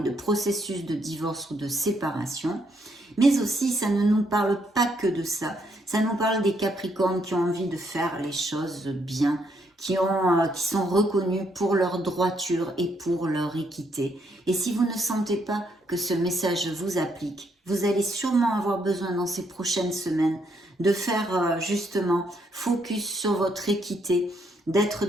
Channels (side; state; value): both; normal; correlation 0.73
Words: de processus de divorce ou de séparation, mais aussi ça ne nous parle pas que de ça, ça nous parle des Capricornes qui ont envie de faire les choses bien, qui sont reconnus pour leur droiture et pour leur équité. Et si vous ne sentez pas que ce message vous applique, vous allez sûrement avoir besoin dans ces prochaines semaines de faire justement focus sur votre équité, d'être